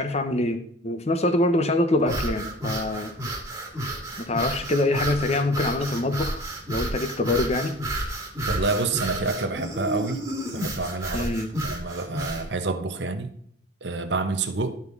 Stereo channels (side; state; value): both; normal; correlation 0.39